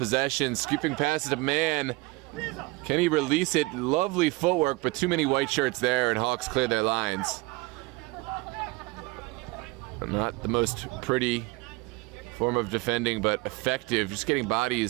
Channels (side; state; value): left; quieter; 22.8 dB